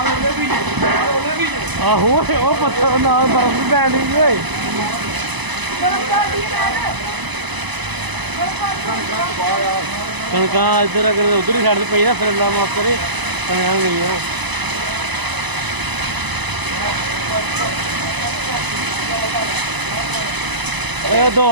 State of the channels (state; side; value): late; left; 1.0 ms